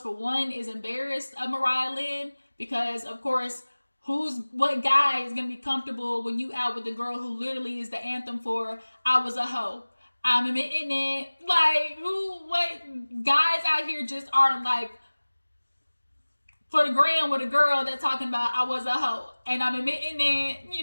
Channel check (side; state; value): both; inverted; correlation -1.00